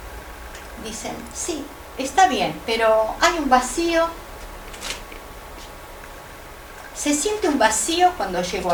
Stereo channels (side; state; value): both; identical; correlation 1.00